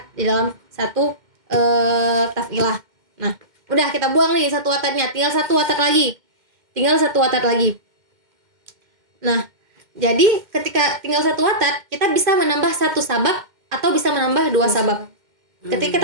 di dalam satu taf'ilah. Nah, udah kita buang nih 1 watatnya, tinggal 1 watat lagi. Nah, jadi ketika tinggal 1 watat, kita bisa menambah 1 sabab atau bisa menambah 2 sabab. Ketika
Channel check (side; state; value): left; late; 2.1 ms